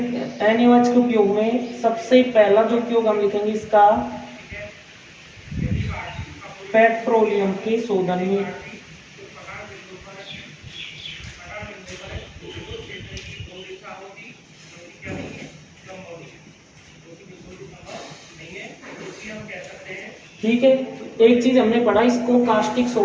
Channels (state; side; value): identical; both; correlation 1.00